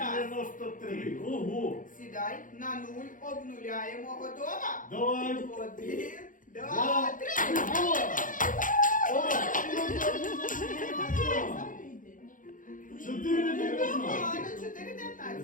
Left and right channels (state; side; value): late; right; 0.38 ms